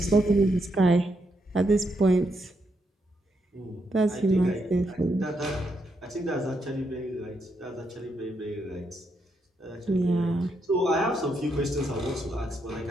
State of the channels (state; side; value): normal; both; correlation 0.79